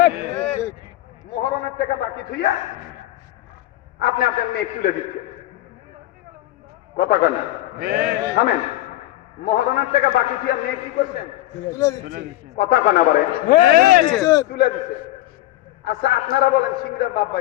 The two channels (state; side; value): quieter; right; 15.6 dB